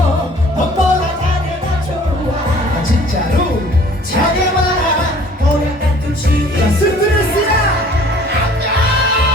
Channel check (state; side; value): normal; both; correlation 0.52